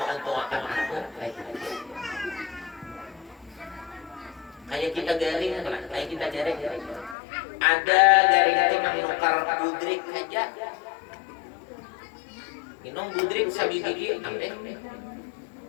menguntungkan aku. Kayak kita garing, kayak kita garing. Ada garing itu menukar budrik saja. Minum budrik sabi gigi ambil.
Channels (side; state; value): right; drops out; at 7.2 s